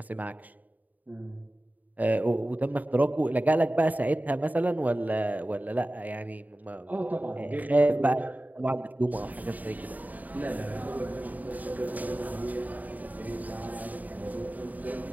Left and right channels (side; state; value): left; late; 0.078 ms